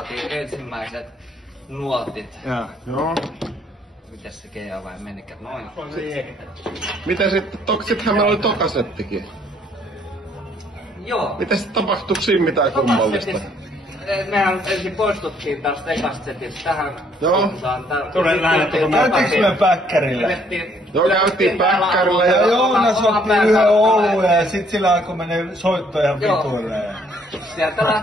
ensimmäiset nuotit. Joo. Mites se GA vai menikään? Noin. Miten sittenhän meillä oli tokasettikin. Joo. Miten sitten tapahtuiko siinä mitään kummallista? Mehän ensin poistuttiin tästä ekasta setistä tähän suuntaan. Käytiinkö me päkkärillä? Joo, käytiin päkkärillä ja Joonas otti yhden oluen ja sit sillä alkoi menee soitto ihan vituille. Sieltä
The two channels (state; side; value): normal; both; correlation 0.65